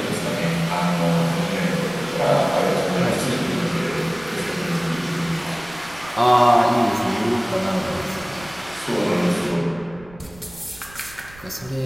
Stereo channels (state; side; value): noise; right; rumble, 22 dB below the sound